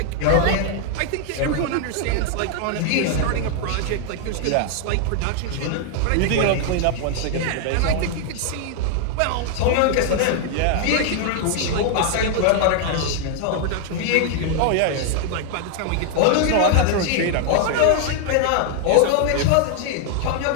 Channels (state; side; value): different; both; correlation 0.00